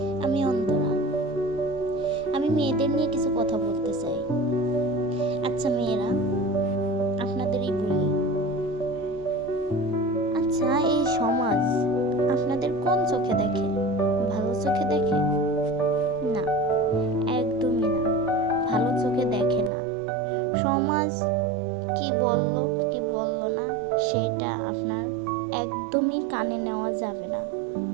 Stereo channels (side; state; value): left; drops out; at 19.7 s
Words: আমি অন্তরা। আমি মেয়েদের নিয়ে কিছু কথা বলতে চাই। আচ্ছা মেয়েরা, আপনাদেরই বলি, আচ্ছা এই সমাজ আপনাদের কোন চোখে দেখে? ভালো চোখে দেখে? না, একদমই না, ভালো চোখে দেখে না। সমাজ কি বলল কি বলল না সেটা আপনার একদমই কানে নেওয়া যাবে না।